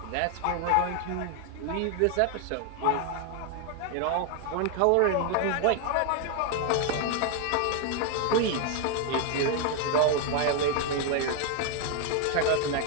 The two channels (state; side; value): different; both; correlation 0.00